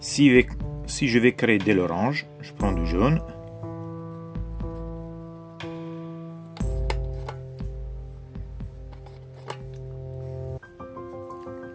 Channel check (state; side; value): identical; both; correlation 1.00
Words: Si je vais créer de l'orange, je prends du jaune.